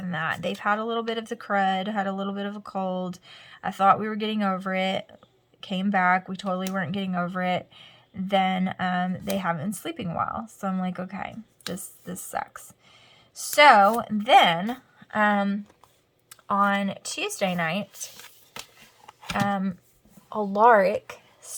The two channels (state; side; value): identical; both; correlation 1.00